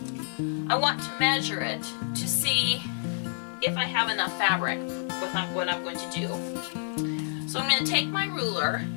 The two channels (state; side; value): silent; right; digital silence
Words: I want to measure it to see if I have enough fabric with what I'm going to do. So I'm going to take my ruler,